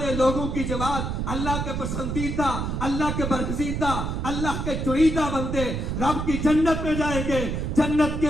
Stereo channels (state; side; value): noise; right; rumble, 2 dB below the sound